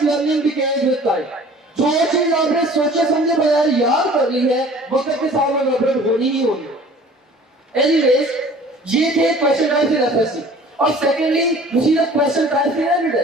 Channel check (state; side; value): normal; both; correlation 0.48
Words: learning becomes with time. जो चीज आपने सोचे समझे बगैर याद कर ली है, वक्त के साथ में अपडेट होनी ही होनी। एनीवेज, ये थे क्वेश्चन टाइप इन एफएससी। और सेकेंडली मुझे the question type in entry